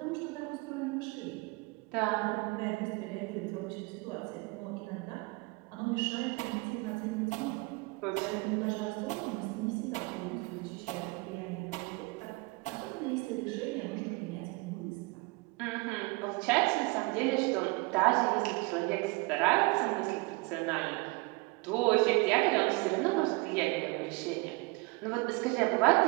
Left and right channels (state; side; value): quieter; left; 26.3 dB